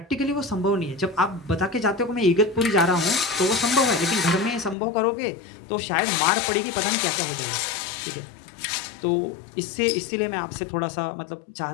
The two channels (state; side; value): drops out; right; at 4.8 s